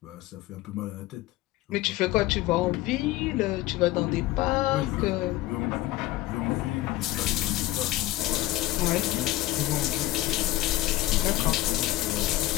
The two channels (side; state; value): right; quieter; 17.0 dB